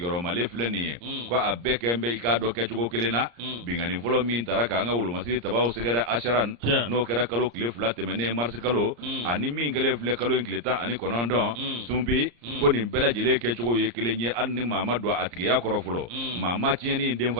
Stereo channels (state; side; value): late; left; 34 ms